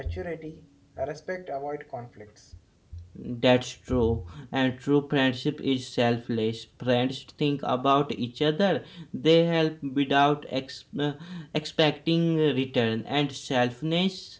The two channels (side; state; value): both; identical; correlation 1.00